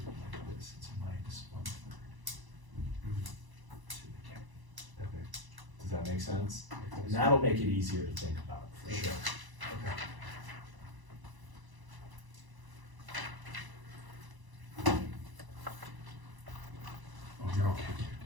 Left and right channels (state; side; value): late; left; 1.0 ms